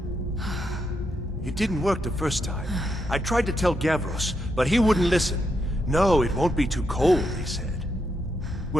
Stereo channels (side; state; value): both; normal; correlation 0.81